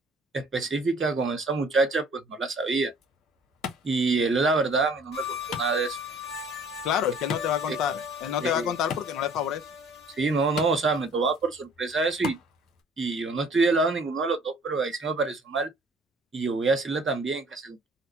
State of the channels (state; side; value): normal; both; correlation 0.53